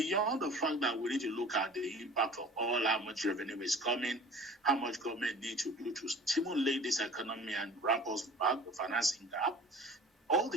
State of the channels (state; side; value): normal; both; correlation 0.44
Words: the fact that we need to look at the impact of all how much revenue is coming, how much government needs to do to stimulate this economy and ramp us back the financing gap, all